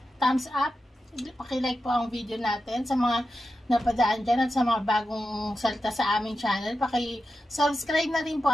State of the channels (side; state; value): both; normal; correlation 0.90